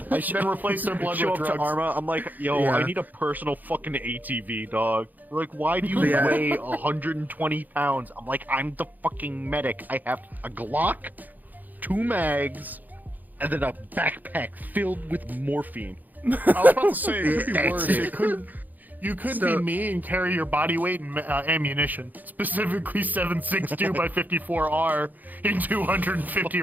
Then replace their blood Show with up drugs. to Arma, I'm like, yo, Yeah. I need a personal fucking ATV, dog. They're like, why do you Yeah. weigh 120 pounds? I'm like, I'm the fucking medic. I have a Glock, 2 mags, and then a backpack filled with morphine. I was about to say, it could be That's worse. it. You could So- be me and carry your body weight and ammunition, specifically 7.62 by 54R in 250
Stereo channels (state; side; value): late; left; 0.083 ms